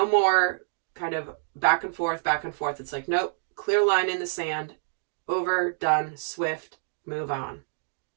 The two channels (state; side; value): silent; left; digital silence